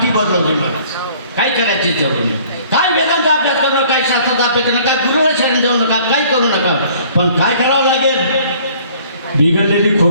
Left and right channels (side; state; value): both; inverted; correlation -0.55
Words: बदलवली. काय करायची जरूर नाही. काय वेदांचा अभ्यास करू नका, काय शास्त्राचा अभ्यास करू नका, गुरुला शरण जाऊ नका, काही करू नका. पण काय करावं लागेल? बिघडलेली